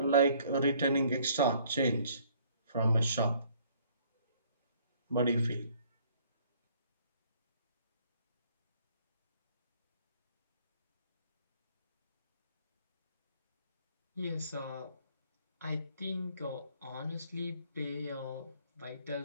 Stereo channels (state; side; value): inverted; both; correlation -0.61